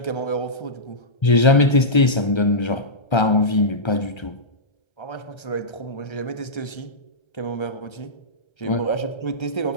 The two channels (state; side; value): late; right; 1.3 ms